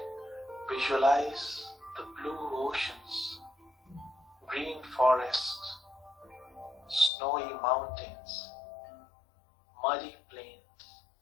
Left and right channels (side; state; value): right; drops out; at 7.1 s